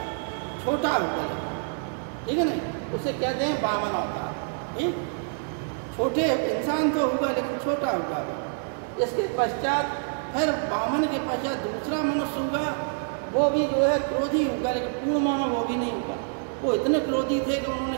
छोटा होगा, ठीक है ना। उसे कहते हैं वामन अवतार। ठीक, छोटे इंसान तो होगा लेकिन छोटा होगा। इसके पश्चात फिर वामन के पश्चात दूसरा मनुष्य होगा, वो भी जो है क्रोधी होगा, लेकिन पूर्ण मानव वो भी नहीं होगा। वो इतने क्रोधी थे कि उन्होंने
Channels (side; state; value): left; silent; digital silence